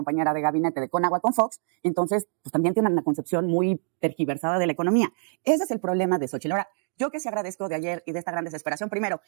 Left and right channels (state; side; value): silent; left; 61 dB below the other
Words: de gabinete de Conagua con Fox, entonces pues también tiene una concepción muy tergiversada de la economía. Ese es el problema de Xóchitl. Ahora, yo que sí agradezco de ayer y de esta gran desesperación, primero,